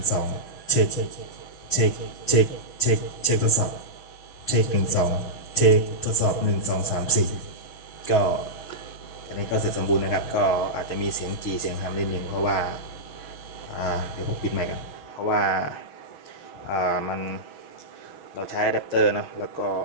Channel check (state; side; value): late; right; 6.1 ms